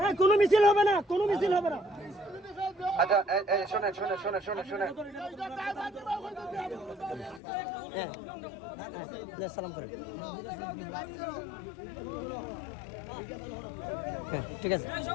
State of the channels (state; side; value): drops out; right; at 7.4 s